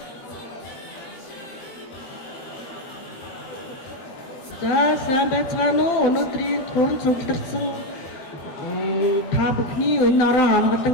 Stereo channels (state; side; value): late; right; 21 ms